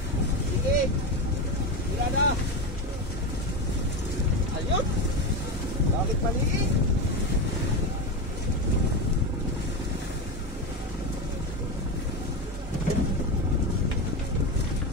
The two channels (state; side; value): normal; both; correlation 0.16